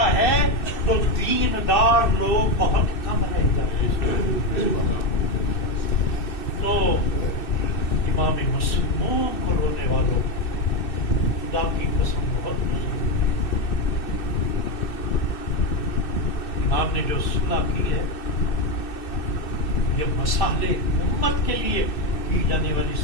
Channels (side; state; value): right; late; 2.6 ms